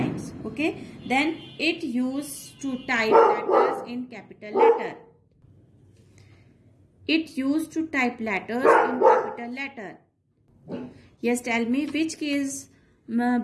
Okay, then it used to type letters in capital letter. It used to type letters in capital letter. Yes, tell me which keys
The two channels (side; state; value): both; identical; correlation 1.00